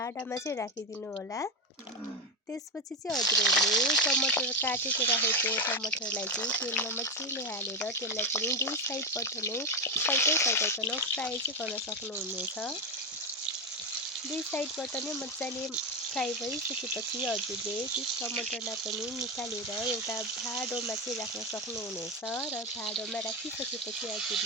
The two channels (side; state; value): both; normal; correlation 0.11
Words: चाहिँ राखिदिनु होला। त्यसपछि चाहिँ हजुरहरूले टमाटर काटेर राखेको टमाटरलाई चाहिँ तेलमा मजाले हालेर त्यसलाई पनि दुई साइडबाट नै फर्काइकन फ्राई चाहिँ गर्न सक्नुहुनेछ। दुई साइडबाट नै मजाले फ्राई भइसकेपछि हजुरले त्यस टमाटरलाई पनि निकालेर एउटा भाँडोमा चाहिँ राख्न सक्नुहुनेछ र भाँडोमा राखिसकेपछि